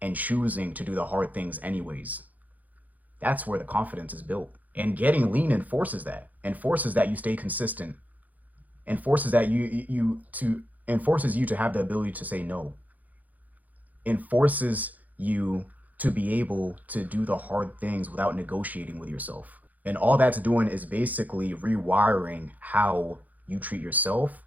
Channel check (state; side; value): late; left; 0.080 ms